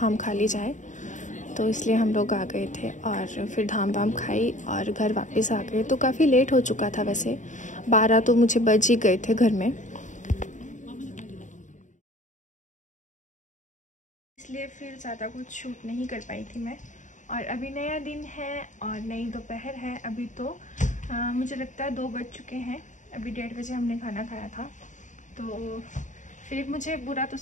खा ली जाए, तो इसलिए हम लोग आ गए थे और फिर धाम वाम खाई और घर वापस आ गए। तो काफ़ी लेट हो चुका था, वैसे 12 तो मुझे बज ही गए थे घर में, इसलिए फिर ज़्यादा कुछ शूट नहीं कर पाई थी मैं। और अभी नया दिन है और नई दोपहर है। अभी तो मुझे लगता है 2 बज चुके हैं, अभी 1:30 बजे हमने खाना खाया था। तो फिर मुझे बुरा तो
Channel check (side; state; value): right; late; 0.36 ms